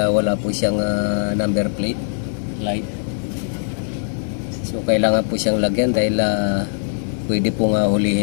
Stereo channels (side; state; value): right; silent; 62 dB below the other